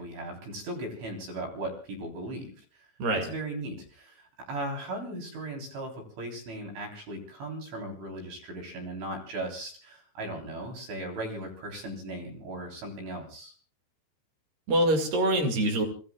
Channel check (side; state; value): left; late; 13 ms